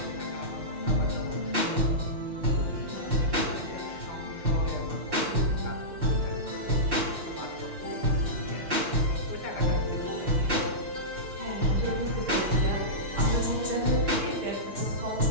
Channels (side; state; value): left; late; 5.7 ms